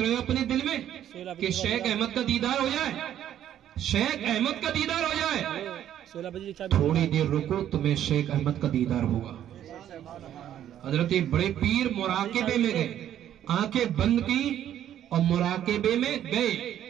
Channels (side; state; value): left; quieter; 11.0 dB